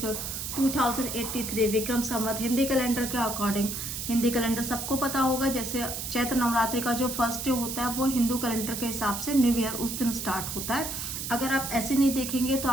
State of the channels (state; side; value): noise; right; hiss, 5 dB below the sound